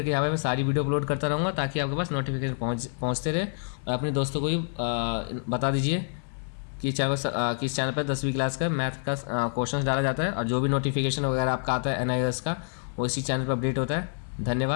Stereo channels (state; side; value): silent; right; digital silence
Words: यहाँ पे मैं सारी वीडियो अपलोड करता रहूँगा ताकि आपके पास नोटिफिकेशन पहुँचते रहे। और अपने दोस्तों को भी बता दीजिए कि कि इस चैनल पर 10वीं क्लास का मैथ का क्वेश्चन डाला जाता है और जो भी नोटिफिकेशन वगैरह आपका आता है NIOS का, वो इसी चैनल पर अपडेट होता है।